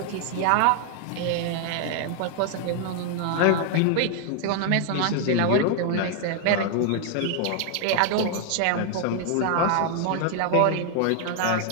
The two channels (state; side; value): different; both; correlation 0.00